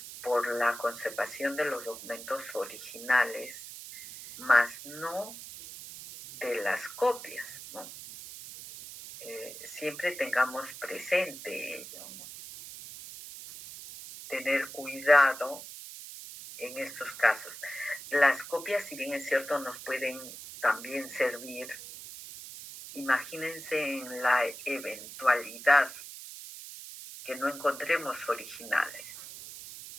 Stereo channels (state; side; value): noise; right; hiss, 12 dB below the sound